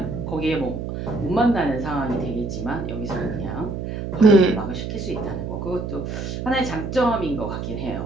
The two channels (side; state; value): right; noise; hum, 5 dB below the sound